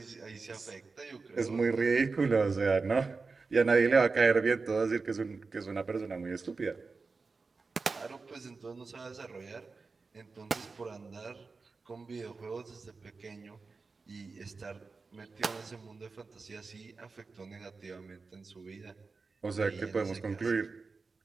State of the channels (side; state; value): left; quieter; 4.3 dB